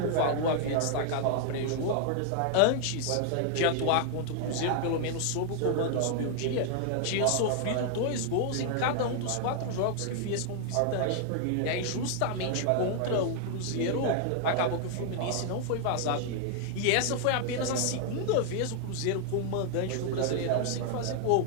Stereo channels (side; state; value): both; different; correlation 0.00